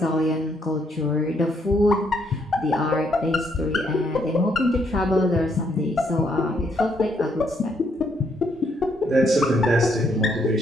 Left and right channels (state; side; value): normal; both; correlation 0.73